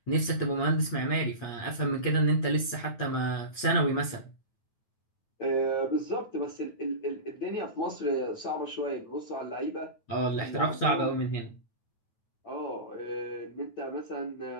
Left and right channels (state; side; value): late; right; 9.2 ms